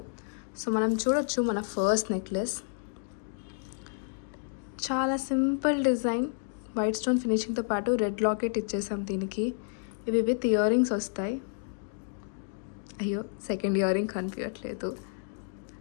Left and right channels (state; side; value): silent; right; digital silence